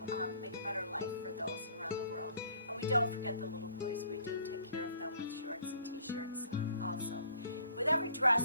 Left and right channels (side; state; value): both; inverted; correlation -0.57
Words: make a better life for those around the world. And we don't forget the little boys. We do take care of them with shorts and t-shirts also. With every